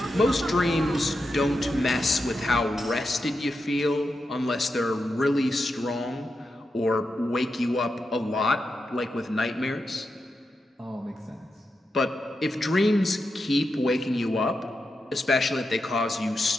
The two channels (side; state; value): both; normal; correlation 0.87